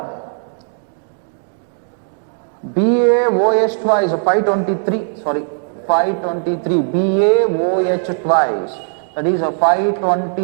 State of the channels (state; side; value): silent; left; digital silence